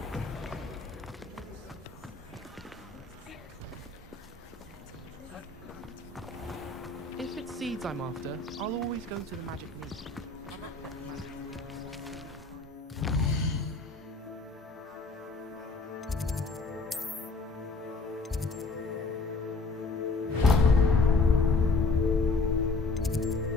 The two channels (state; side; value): quieter; right; 3.6 dB